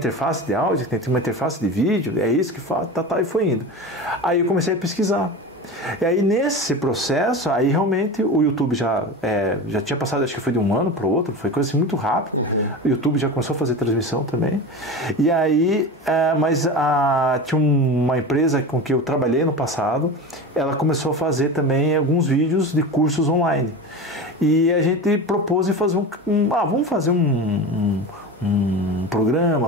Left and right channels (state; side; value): normal; both; correlation 0.28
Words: de áudio, tem que ter uma interface de vídeo, é isso que faz, e foi indo. Aí eu comecei a pesquisar, E aí nesse processo, aí realmente o YouTube já tinha passado, acho que foi de um ano para o outro, foi coisa assim muito rápida. O YouTube já começou a fazer transmissão também. E aí, tinha uma empresa com que eu trabalhei no passado, ela começou a fazer também alguns vídeos de cursos online. E a gente propôs de fazer vamos fazer um